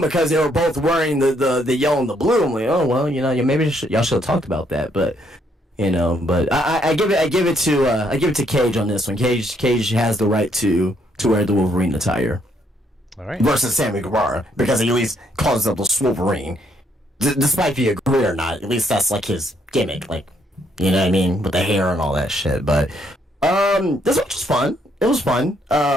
they were both wearing the yellow and the blue. I'm like, oh well, maybe y'all should have talked about that. But but I give it to Cage on this one. Cage has the right to wear the Wolverine attire. All right. Versus Sammy Guevara, because he at least calls himself the Wolverine. Despite if you agree or not, at least that's like his gimmick, like, you know what I mean, with the hair and all that shit. But this one was fun. It was fun.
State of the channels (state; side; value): normal; both; correlation 0.71